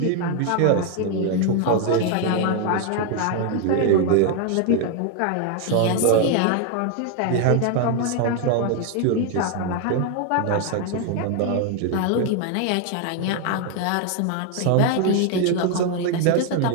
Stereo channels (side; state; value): both; different; correlation 0.01